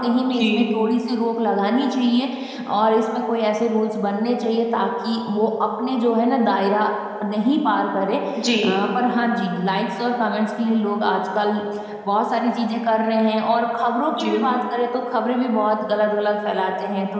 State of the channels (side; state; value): both; identical; correlation 1.00